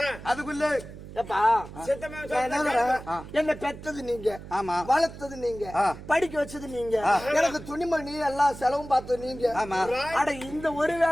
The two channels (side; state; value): right; noise; hum, 14 dB below the sound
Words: அதுக்குள்ள என்ன பெற்றது நீங்க, ஆமா, வளர்த்தது நீங்க, படிக்க வச்சது நீங்க, எனக்கு துணிமணி எல்லாம் செலவும் பார்த்தது நீங்க. அட இந்த ஒரு